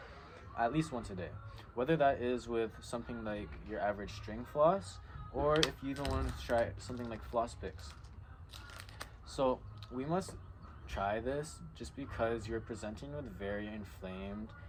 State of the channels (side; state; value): both; identical; correlation 1.00